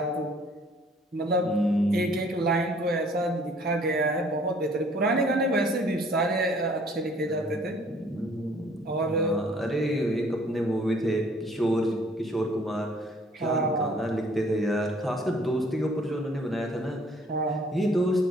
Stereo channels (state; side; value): normal; both; correlation 0.58